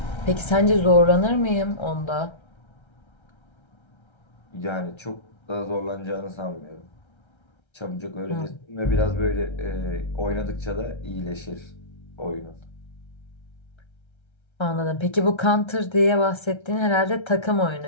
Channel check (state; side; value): late; right; 1.3 ms